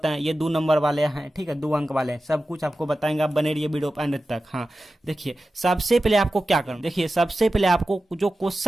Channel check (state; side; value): normal; both; correlation 0.94